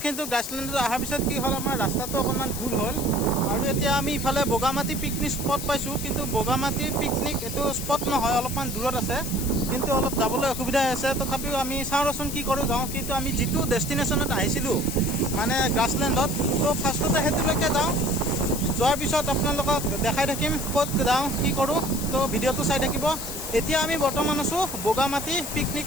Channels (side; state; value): left; noise; hiss, 7 dB below the sound